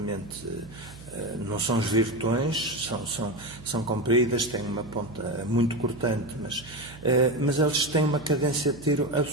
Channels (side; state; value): right; noise; hum, 18 dB below the sound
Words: não são os virtões, são compridas, têm uma ponta muito cortante, mas eles têm uma cadência de tiro